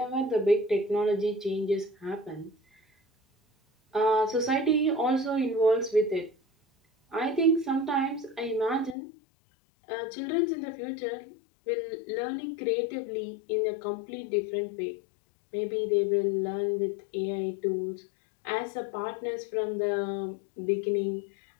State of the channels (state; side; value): drops out; right; at 9.0 s